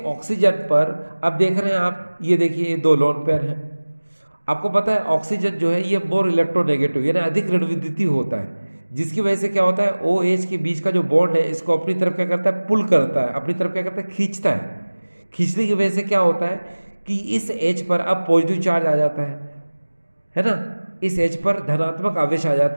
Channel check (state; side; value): inverted; both; correlation -1.00